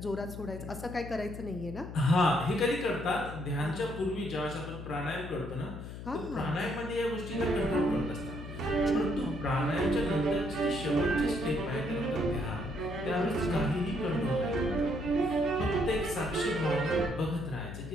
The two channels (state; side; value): noise; left; hum, 10 dB below the sound